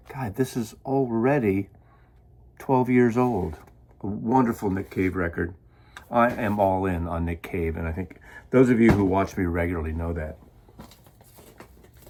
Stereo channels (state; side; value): identical; both; correlation 1.00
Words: God, this is already 12 years old. A wonderful Nick Cave record. I am all in on Nick Cave, and I think those of you who watch me regularly know that.